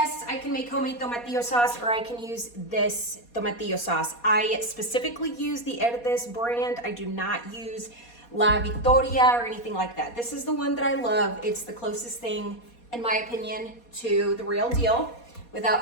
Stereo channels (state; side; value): late; right; 4.2 ms